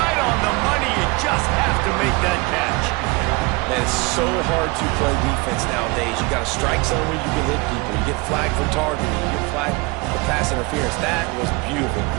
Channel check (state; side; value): quieter; left; 26.0 dB